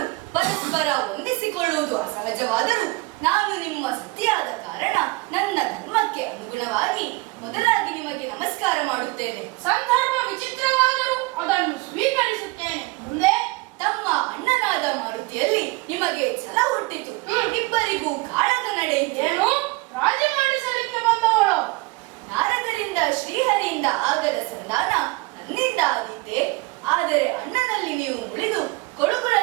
ಪರಸ್ಪರ ಹೊಂದಿಸಿಕೊಳ್ಳುವುದು ಅಸಹಜವಾದರೂ ನಾನು ನಿಮ್ಮ ಸತಿಯಾದ ಕಾರಣ ನನ್ನ ಧರ್ಮಕ್ಕೆ ಅನುಗುಣವಾಗಿ ಮೊದಲಾಗಿ ನಿಮಗೆ ನಮಸ್ಕಾರ ಮಾಡುತ್ತೇನೆ. ಸಂದರ್ಭ ವಿಚಿತ್ರವಾದರೂ ಅದನ್ನು ಸ್ವೀಕರಿಸುತ್ತೇನೆ. ಮುಂದೆ ತಮ್ಮ ಅಣ್ಣನಾದ ಮಾರುತಿಯಲ್ಲಿ ನಿಮಗೆ ಛಲ ಹುಟ್ಟಿತು. ಇಬ್ಬರಿಗೂ ಕಾಳಗ ನಡೆಯಿತೇನು? ರಾಜ ಮಾಡಿಸಲಿಕ್ಕೆ ಬಂದವಳು ನಾರದರಿಂದ ಶ್ರೀಹರಿಯಿಂದ ಆಗದ ಸಂಧಾನ ನನ್ನಿಂದ ಆದಿತ್ತೆ. ಆದರೆ ಅಣ್ಣನಲ್ಲಿ ನೀವು ಮುಳಿದು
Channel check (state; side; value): quieter; left; 24.3 dB